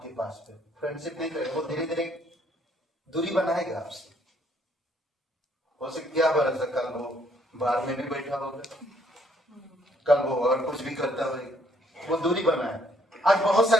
पास पे, फ्रेंडशिप नहीं करेगा, वो धीरे धीरे दूरी बनाएगा आपसे। हो सकता क्या भरोसा, कल वो बाहर में भी बैठा होगा, कल वो और कुछ भी करता होगा, वो दूरी बनाए। आज बहुत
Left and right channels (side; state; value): both; normal; correlation 0.66